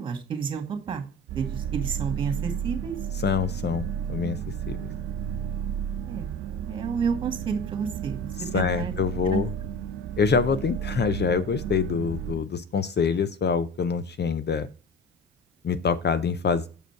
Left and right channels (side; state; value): both; normal; correlation 0.34